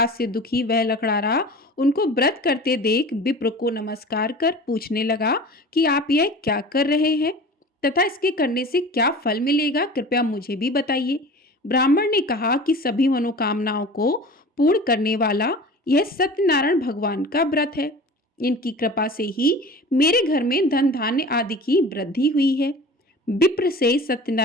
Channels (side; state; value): both; normal; correlation 0.39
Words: से दुखी वह लकड़ारा उनको व्रत करते देख विप्र को नमस्कार कर पूछने लगा कि आप यह क्या कर रहे हैं तथा इसके करने से क्या फल मिलेगा, कृपया मुझे भी बताइए। ब्राह्मण ने कहा कि सभी मनोकामनाओं को पूर्ण करने वाला यह सत्यनारायण भगवान का व्रत है। इनकी कृपा से ही मेरे घर में धन धान्य आदि की वृद्धि हुई है। विप्र से